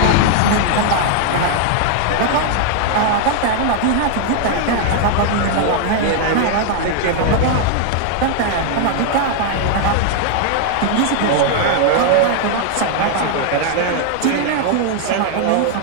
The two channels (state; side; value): different; both; correlation 0.00